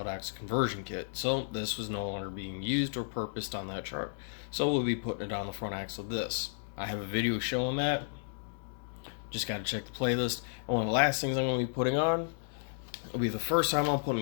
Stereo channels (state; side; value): silent; right; digital silence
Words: axle conversion kit. So this was no longer being used or purposed on that truck. So we'll be putting it on the front axle of this. I have a video showing that. Just got to check the playlist. And one of the last things I'm going to be putting on will be the first time I'm